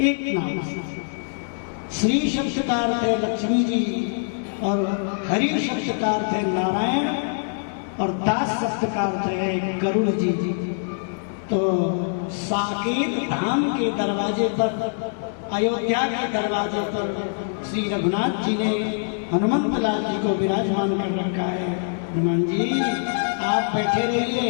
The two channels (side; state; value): right; silent; digital silence